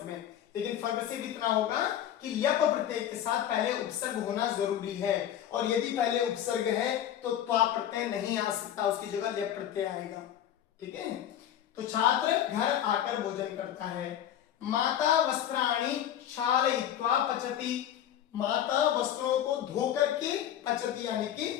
में, लेकिन फर्क सिर्फ इतना होगा कि ल्यप प्रत्यय के साथ पहले उपसर्ग होना जरूरी है, और यदि पहले उपसर्ग है तो त्वा प्रत्यय नहीं आ सकता, उसकी जगह ल्यप प्रत्यय आएगा। ठीक है, तो छात्र घर आकर भोजन करता है। माता वस्त्राणि क्षालयित्वा पचति, माता वस्त्रों को धो करके पचति यानी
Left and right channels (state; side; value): quieter; right; 10.8 dB